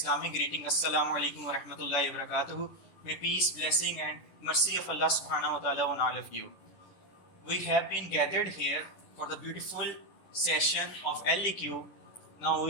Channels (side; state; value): right; late; 10 ms